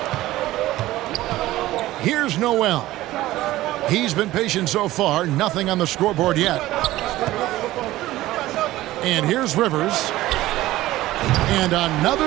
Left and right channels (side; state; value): left; quieter; 16.3 dB